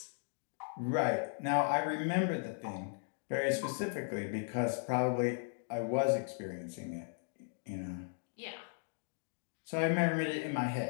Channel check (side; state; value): right; silent; digital silence